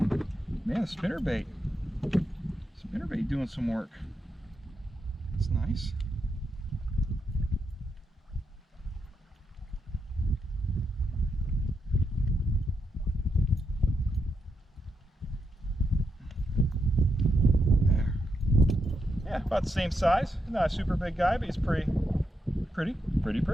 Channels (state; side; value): normal; both; correlation 0.83